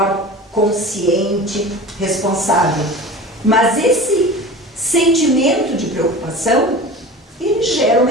consciente, responsável. Mas esse sentimento de preocupação, ele gera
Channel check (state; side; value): normal; both; correlation 0.35